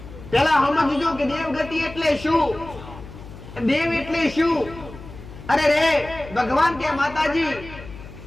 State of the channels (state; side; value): noise; left; hum, 15 dB below the sound